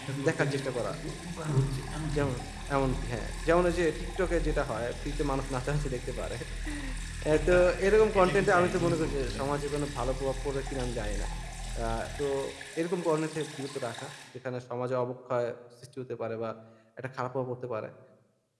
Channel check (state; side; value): identical; both; correlation 1.00